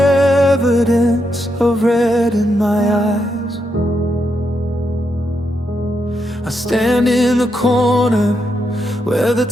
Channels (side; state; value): both; normal; correlation 0.82